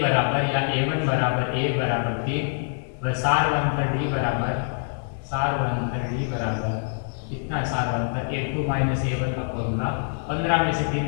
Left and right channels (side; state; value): right; silent; 60 dB below the other